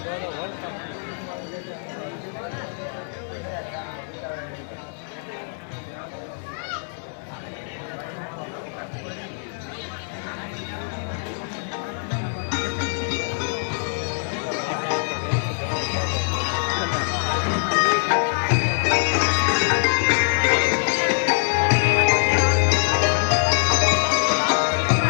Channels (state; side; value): silent; right; digital silence